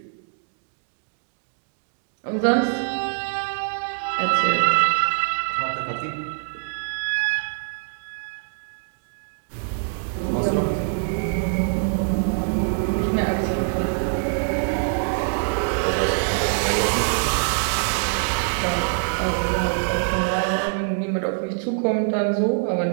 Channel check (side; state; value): left; silent; digital silence